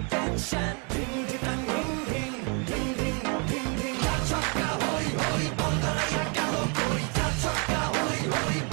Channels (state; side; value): quieter; left; 35.6 dB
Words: tension. Ding ding dang, ding ding, ding ding ding ding. Chaka hoy hoy, Bangalaya galo koi. Chaka hoy hoy,